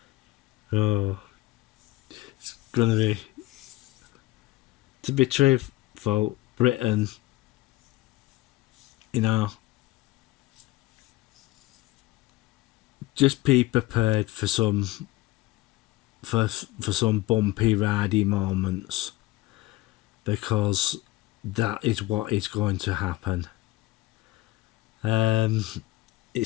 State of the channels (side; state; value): right; quieter; 18.2 dB